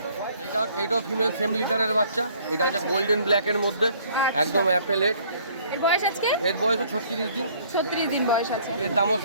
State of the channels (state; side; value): inverted; both; correlation -0.59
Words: এইটাও ফিমেল সেম লিটারের বাচ্চা, এটা হচ্ছে গোল্ডেন ব্ল্যাকের মধ্যে, একদম অ্যাপেলেট। এর বয়স আজকে? এর বয়স 36 দিন, 36 দিন বয়স আছে। এর দামও